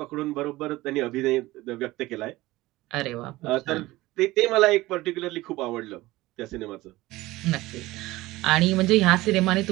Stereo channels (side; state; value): left; quieter; 18.7 dB